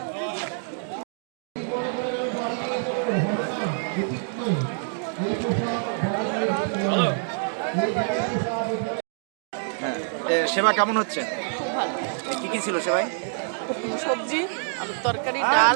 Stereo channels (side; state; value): left; silent; digital silence